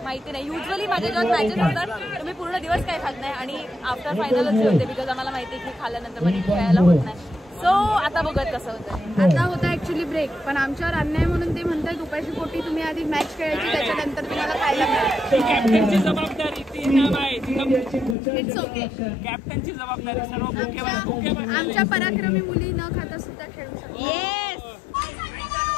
माहिती नाही। युजली माझ्या जेव्हा मॅचेस होतात तर मी पूर्ण दिवस काही खात नाही आणि आफ्टर फायनलच जेवते, बिकॉज आम्हाला माहिती आहे की खाल्ल्यानंतर मला खेळायला होत नाही। सो आता बघत कसं होतं। आता होता ऍक्च्युली ब्रेक, पण आमच्यावर अन्याय म्हणून ते म्हणतात उपाशी पोटी तुम्ही आधी मॅच खेळायची, त्याच्यानंतर तुम्हाला खायला मिळेल। कॅप्टनची जबाबदारी ती नाम आहे, इट्स ओके। कॅप्टनची जबाबदारी सर्व भुकेवर। आमच्या पराक्रमी मुली न खाता सुद्धा खेळू शकतात। Yes,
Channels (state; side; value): drops out; right; at 18.2 s